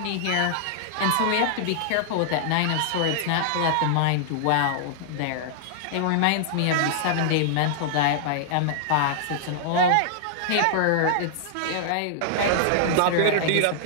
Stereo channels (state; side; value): different; both; correlation -0.01